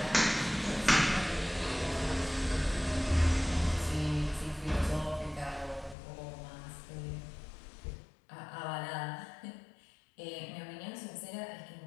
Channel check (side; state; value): right; drops out; at 6.0 s